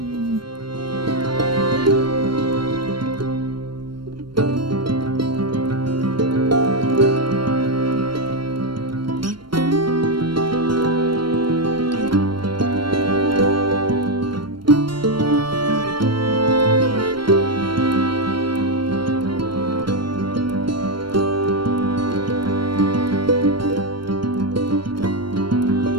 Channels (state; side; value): late; left; 0.72 ms